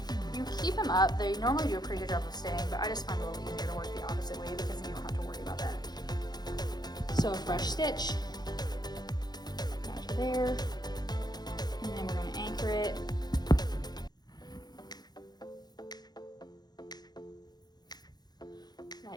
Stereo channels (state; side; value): late; right; 0.20 ms